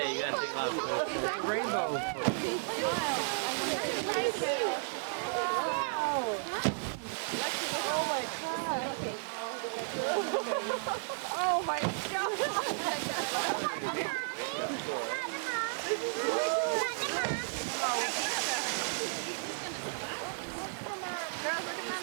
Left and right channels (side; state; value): left; silent; 55 dB below the other